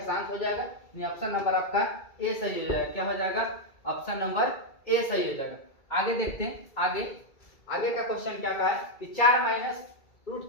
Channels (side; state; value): right; late; 2.3 ms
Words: हो जाएगा। ऑप्शन नंबर आपका ए सही हो जाएगा। क्या हो जाएगा? ऑप्शन नंबर ए सही हो जाएगा। आगे देखते हैं। आगे का क्वेश्चन क्या कहा है कि 4 माइनस